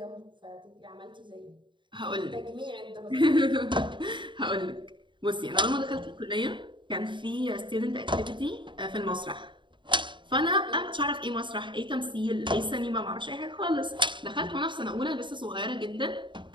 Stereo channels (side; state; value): left; late; 0.23 ms